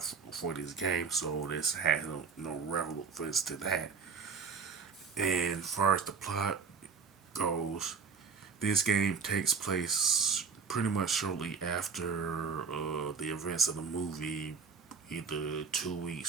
for this game, so this has no relevance to that. And as far as the plot goes, this game takes place pretty much shortly after the events of the movie, either 2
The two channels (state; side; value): quieter; left; 5.7 dB